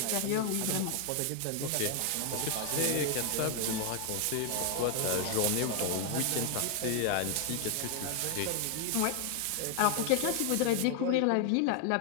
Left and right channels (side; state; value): both; different; correlation 0.00